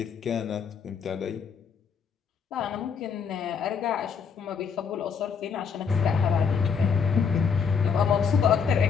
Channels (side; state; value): right; quieter; 6.2 dB